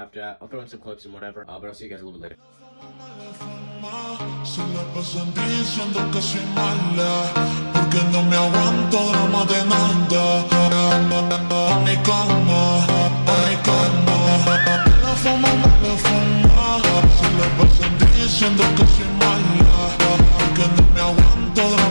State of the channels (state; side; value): inverted; both; correlation -1.00